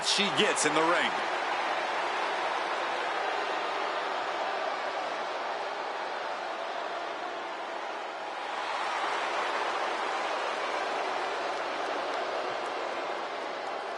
she gets in the ring.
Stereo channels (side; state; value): both; identical; correlation 1.00